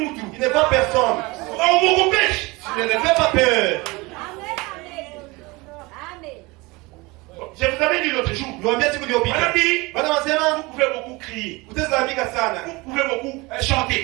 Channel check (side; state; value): left; quieter; 23.9 dB